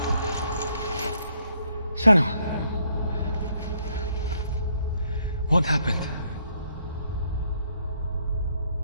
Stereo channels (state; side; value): inverted; both; correlation -0.70